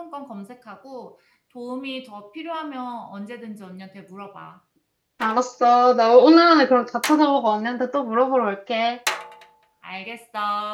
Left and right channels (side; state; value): both; identical; correlation 1.00